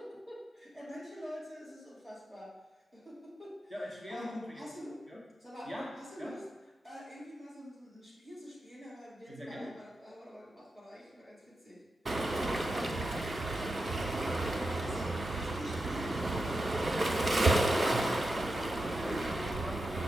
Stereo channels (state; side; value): normal; both; correlation 0.89